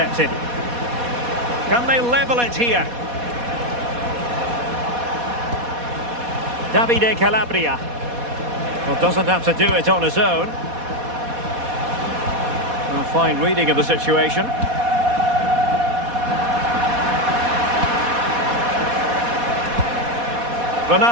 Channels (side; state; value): left; late; 4.1 ms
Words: Can they level it here? Davide Calabria. Well, doesn't have to do it on his own. A fine reading of the situation.